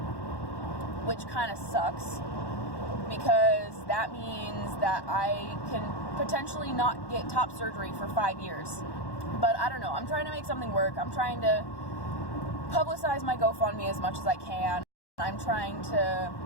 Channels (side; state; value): right; late; 1.1 ms